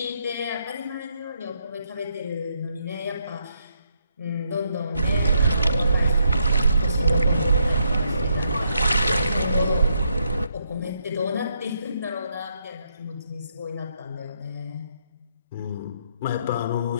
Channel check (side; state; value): both; inverted; correlation -0.76